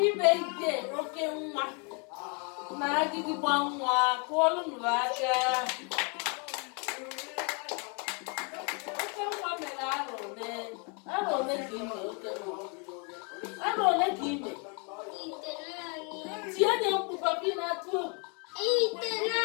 birthday, okenwa. Na Agidigba nwa, kụọlụ nụ aka. Okenwa mere arọ ole ka ime okenwa? Arọ ole ka ime? Tie nye mkpu papi na-atụ.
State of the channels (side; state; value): right; quieter; 35.0 dB